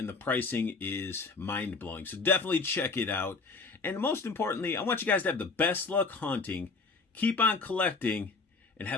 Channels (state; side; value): quieter; right; 4.2 dB